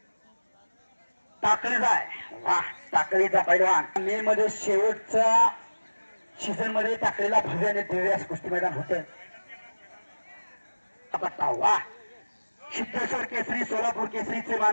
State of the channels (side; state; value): both; inverted; correlation -1.00